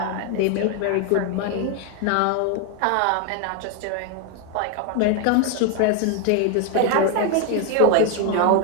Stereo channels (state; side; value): different; both; correlation 0.00